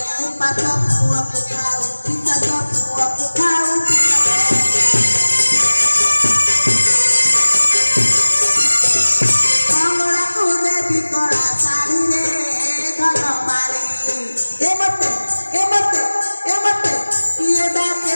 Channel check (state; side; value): inverted; both; correlation -1.00